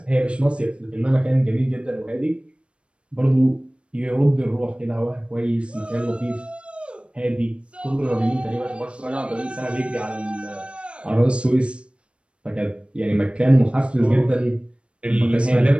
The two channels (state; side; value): late; left; 0.058 ms